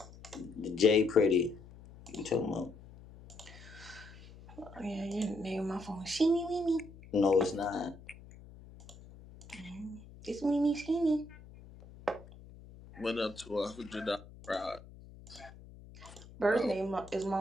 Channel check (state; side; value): noise; left; hum, 19 dB below the sound